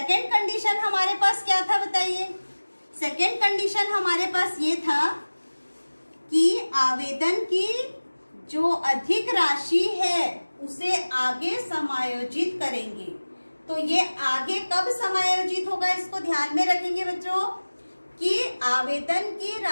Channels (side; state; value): both; inverted; correlation -1.00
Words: कंडीशन हमारे पास क्या था बताइए? सेकेंड कंडीशन हमारे पास ये था कि आवेदन की जो अधिक राशि है उसे आगे समायोजित करेंगे। तो ये आगे कब समायोजित होगा इसको ध्यान में रखेंगे बच्चों कि आवेदन की